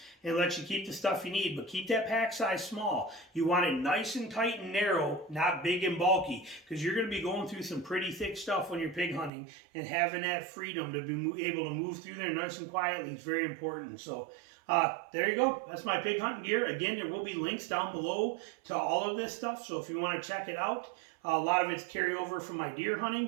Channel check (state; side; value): drops out; left; at 9.3 s